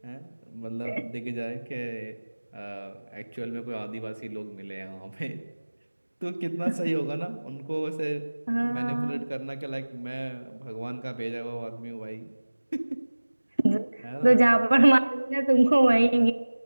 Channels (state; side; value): inverted; both; correlation -1.00